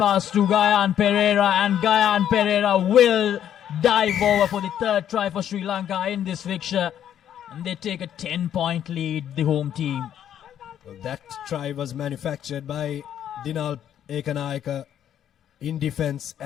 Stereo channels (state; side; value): quieter; right; 10.2 dB